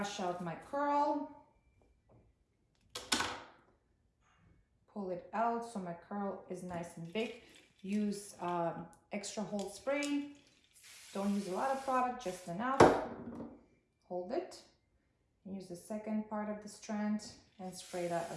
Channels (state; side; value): identical; both; correlation 1.00